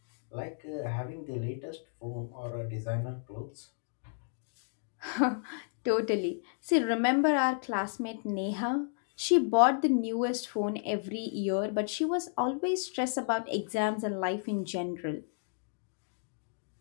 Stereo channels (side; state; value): right; silent; digital silence